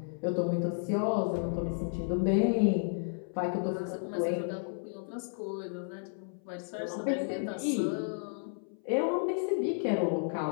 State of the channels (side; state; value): right; silent; 56 dB below the other